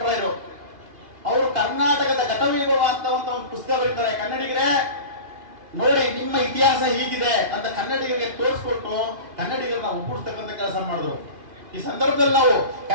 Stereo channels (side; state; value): left; late; 2.5 ms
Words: ಅವರು ಕರ್ನಾಟಕದ ಘಟವೈಭವ ಅಂತ ಒಂದು ಪುಸ್ತಕ ಬರೀತಾರೆ. ಕನ್ನಡಿಗರೇ ನೋಡಿ, ನಿಮ್ಮ ಇತಿಹಾಸ ಹೀಗಿದೆ ಅಂತ ಕನ್ನಡಿಗರಿಗೆ ತೋರಿಸ್ಕೊಟ್ಟು ಕನ್ನಡಿಗರನ್ನ ಒಗ್ಗೂಡಿಸ್ತಕ್ಕಂಥ ಕೆಲಸ ಮಾಡಿದ್ರು. ಈ ಸಂದರ್ಭದಲ್ಲಿ ನಾವು